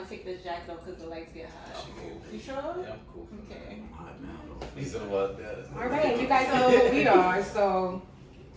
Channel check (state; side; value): identical; both; correlation 1.00